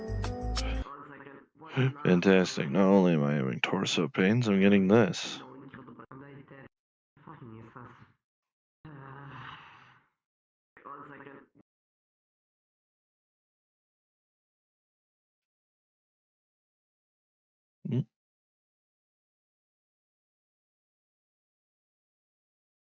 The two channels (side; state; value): both; identical; correlation 1.00